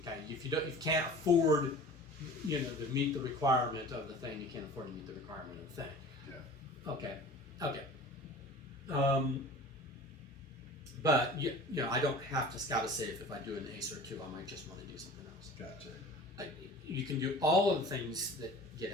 If you can't afford, to meet the requirement of the thing, you can't afford to meet the requirement of the thing. Yeah. Okay. But I don't have to scout a safe if I do an ace or two. I might just want to do something else. Gotcha. You can do all of the things that get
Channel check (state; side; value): normal; both; correlation 0.41